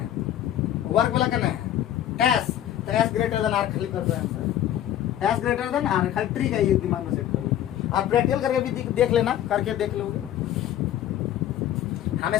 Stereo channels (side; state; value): right; quieter; 11.7 dB